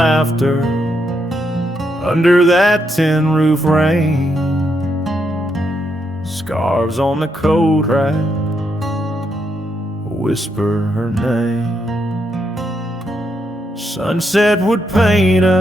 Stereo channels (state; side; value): normal; both; correlation 0.79